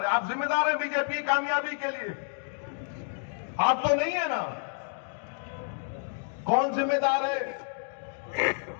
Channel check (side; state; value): right; silent; digital silence